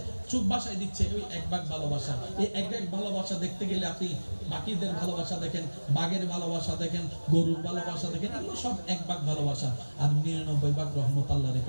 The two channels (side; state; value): both; inverted; correlation -1.00